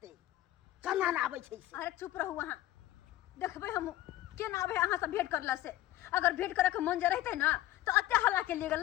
कना ना आबै छै से। अरे चुप रहू वहां देखबे हम के ना आबे अहां से भेंट करला से अगर भेंट करे के मन जे रहते ना तो अत्ते हल्ला के लिए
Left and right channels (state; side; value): quieter; right; 14.9 dB